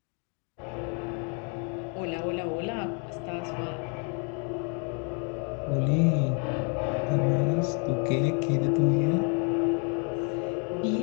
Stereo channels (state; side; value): quieter; right; 38.5 dB